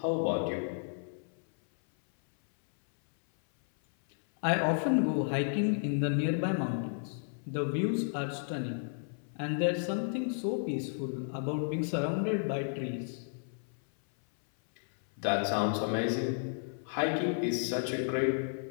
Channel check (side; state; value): right; silent; 56 dB below the other